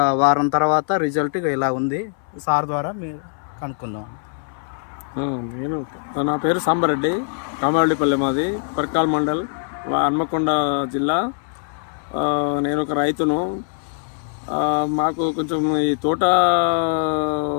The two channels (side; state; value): right; silent; 59 dB below the other